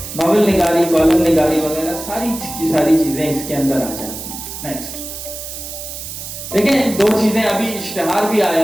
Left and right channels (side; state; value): right; noise; hiss, 9 dB below the sound